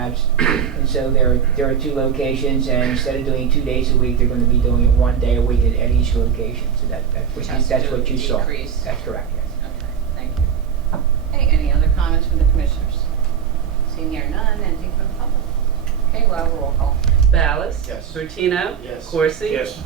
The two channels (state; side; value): quieter; left; 7.9 dB